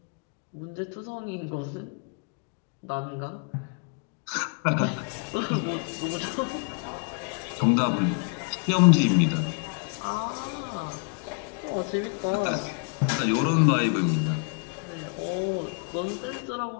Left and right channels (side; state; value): right; quieter; 38.6 dB